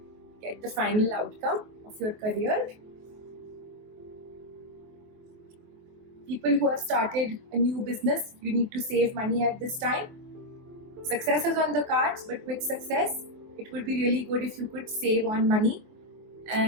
get the final outcome of your career. People who have started a new business, you need to save money at this time. Success is on the cards, but with success, it would be really good if you could save on money.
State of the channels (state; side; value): late; left; 24 ms